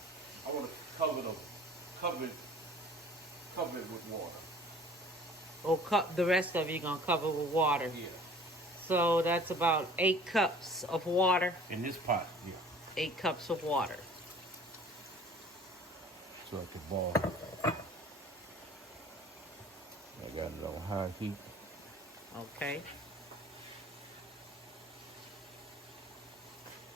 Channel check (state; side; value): normal; both; correlation 0.49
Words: I want to cover it with water. Oh, the rest of you gonna cover with water. Yeah. So that's about 8 cups of water. In this pot, yeah. 8 cups of water. So I can boil. I got it on high heat. Okay.